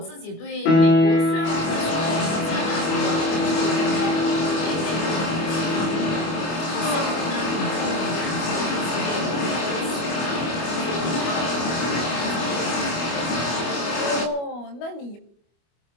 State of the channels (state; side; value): late; right; 25 ms